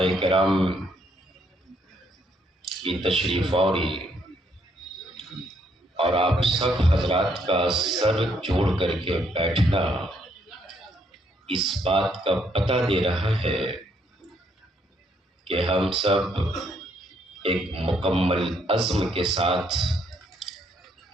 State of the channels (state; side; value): normal; both; correlation 0.71